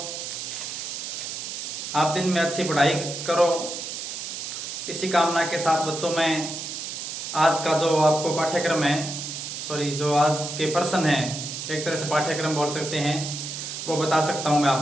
आप दिन में अच्छी पढ़ाई करो, इसी कामना के साथ बच्चों में आज का जो आपको पाठ्यक्रम है, जो आज के पर्सन है, एक तरह से पाठ्यक्रम बोल सकते हैं, वो बता सकता हूं मैं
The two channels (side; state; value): right; noise; hiss, 6 dB below the sound